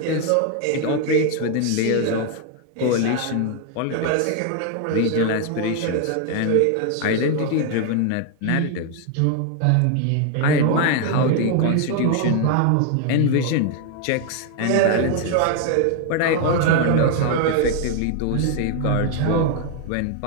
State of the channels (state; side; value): different; both; correlation 0.00